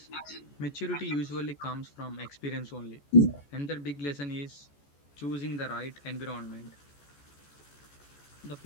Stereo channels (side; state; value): right; late; 14 ms